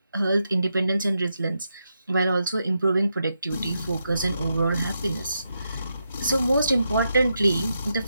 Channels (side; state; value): both; inverted; correlation -0.84